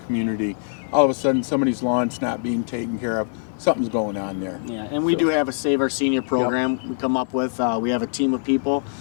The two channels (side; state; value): right; silent; digital silence